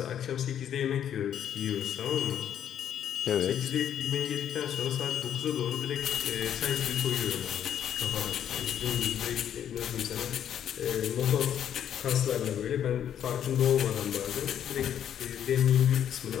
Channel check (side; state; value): right; quieter; 9.7 dB